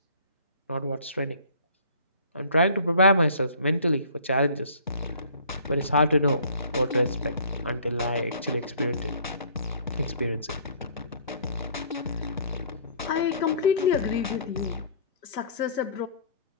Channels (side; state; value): both; inverted; correlation -0.52